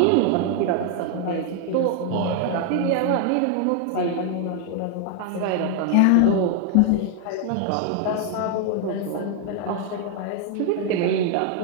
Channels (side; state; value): both; different; correlation 0.00